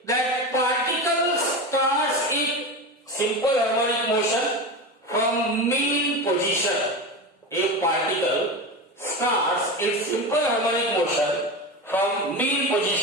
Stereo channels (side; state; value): both; normal; correlation 0.23